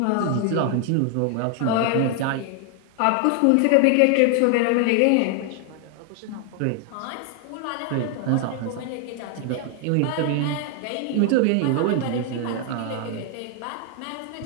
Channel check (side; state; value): both; different; correlation 0.00